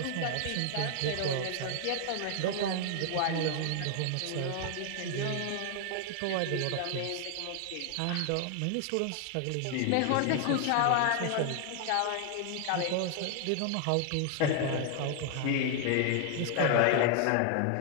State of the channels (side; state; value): both; different; correlation 0.00